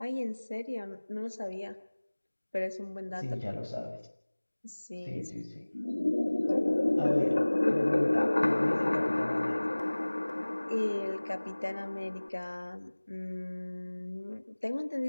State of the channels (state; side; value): inverted; both; correlation -1.00